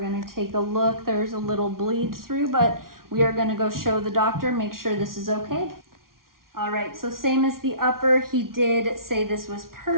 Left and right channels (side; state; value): left; late; 0.92 ms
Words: take a look. There's a little bleed through, but we are gonna go show the doctor, make sure this is okay. All right, so same as the upper, he did say this was